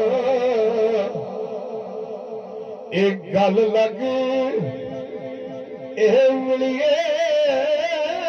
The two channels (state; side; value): identical; both; correlation 1.00